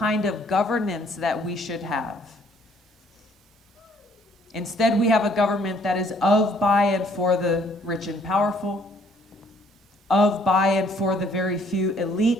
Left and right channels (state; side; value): normal; both; correlation 0.63